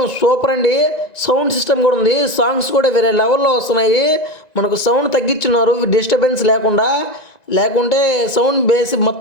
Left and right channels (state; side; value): late; right; 1.9 ms